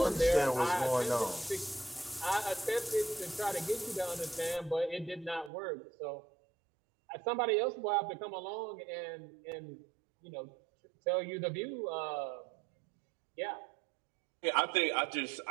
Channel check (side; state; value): left; drops out; at 5.5 s